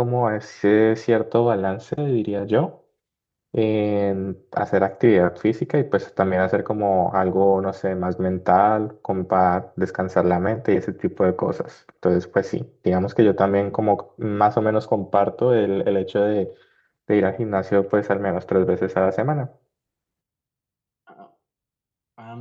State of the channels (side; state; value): both; identical; correlation 1.00